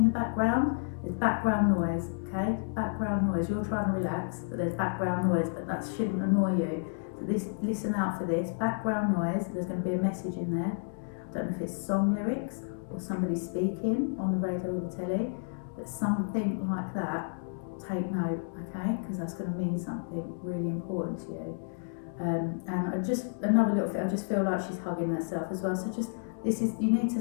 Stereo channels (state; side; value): silent; right; digital silence